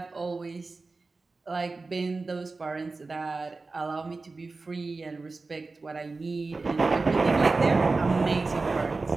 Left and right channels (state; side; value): quieter; left; 3.8 dB